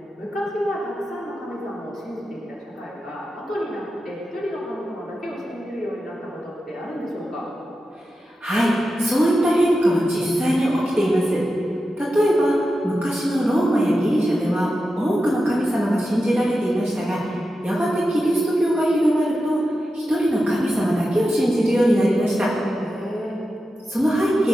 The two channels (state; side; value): normal; both; correlation 0.91